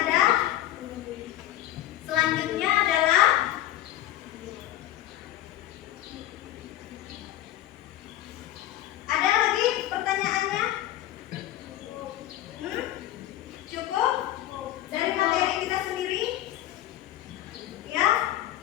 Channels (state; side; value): quieter; right; 13.7 dB